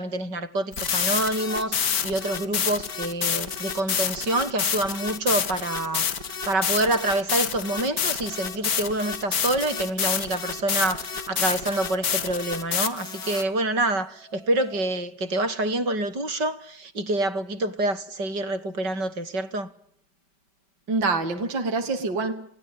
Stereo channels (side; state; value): left; late; 5.1 ms